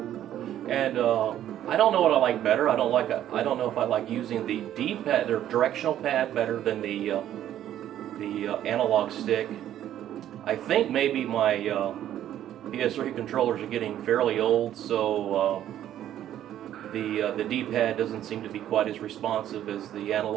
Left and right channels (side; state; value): left; quieter; 11.6 dB